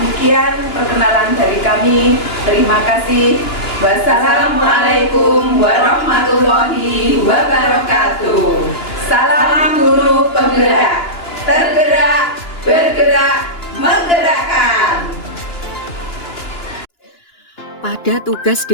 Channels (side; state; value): right; late; 2.9 ms